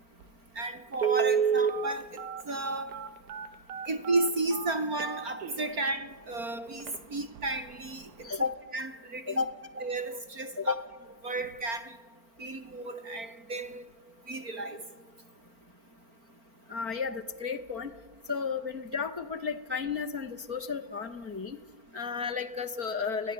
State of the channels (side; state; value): left; late; 4.4 ms